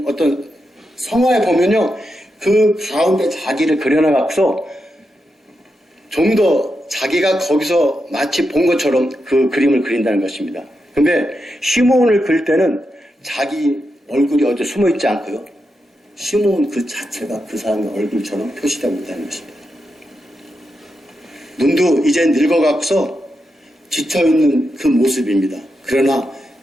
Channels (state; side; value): normal; both; correlation 0.86